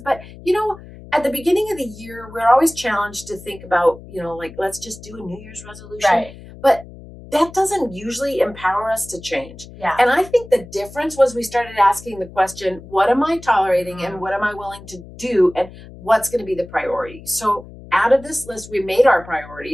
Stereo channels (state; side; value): noise; left; hum, 17 dB below the sound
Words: but at the beginning of the year, we're always challenged to think about, like, let's just do a New Year's resolution. Right. But that doesn't usually empower us to change. Yeah. And I think the difference was we started asking the question, what am I tolerating and what am I willing to do, and what's going to be the priority? So out of this list, we made our